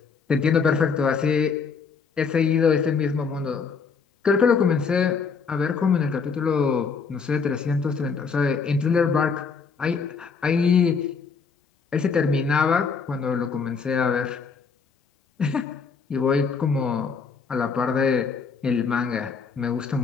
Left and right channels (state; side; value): quieter; right; 5.4 dB